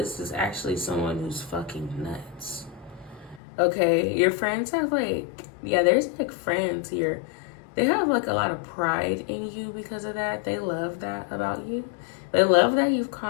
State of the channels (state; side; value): drops out; right; at 3.4 s